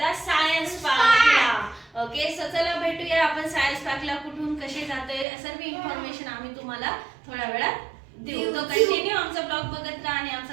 सायन्स पार्कला. ओके, सो चला भेटूया आपण सायन्स पार्कला. कुठून कसे जातोय सर्व इन्फॉर्मेशन आम्ही तुम्हाला थोड्या वेळात देऊ. तो कंटिन्यू आमचा ब्लॉग बघत राहा. आणि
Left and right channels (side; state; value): left; drops out; at 5.2 s